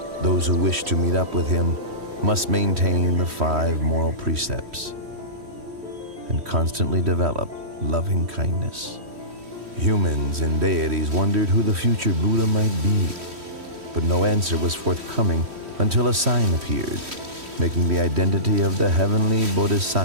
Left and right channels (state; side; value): late; left; 3.1 ms